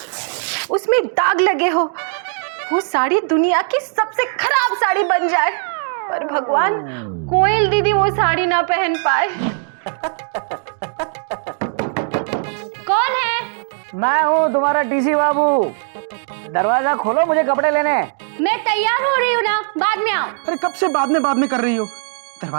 उसमें दाग लगे हो, वो साड़ी दुनिया की सबसे खराब साड़ी बन जाए, पर भगवान कोयल दीदी वो साड़ी ना पहन पाए। कौन है? मैं हूँ तुम्हारा टीसी बाबू। दरवाजा खोलो, मुझे कपड़े लेने हैं। मैं तैयार हो रही हूँ ना, बाद में आओ। अरे कब से बाद में कर रही हो?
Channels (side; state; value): left; silent; digital silence